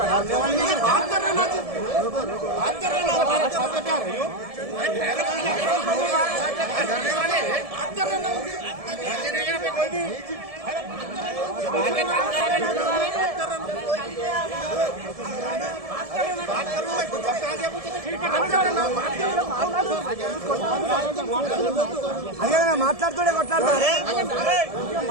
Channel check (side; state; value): left; late; 1.7 ms